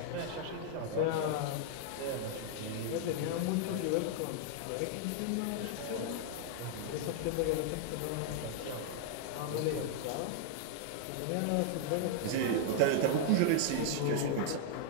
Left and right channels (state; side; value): different; both; correlation -0.01